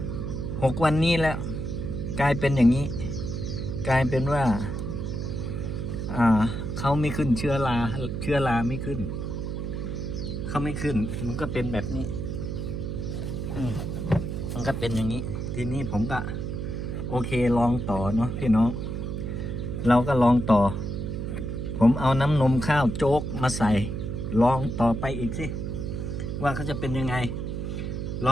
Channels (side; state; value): right; noise; hum, 3 dB below the sound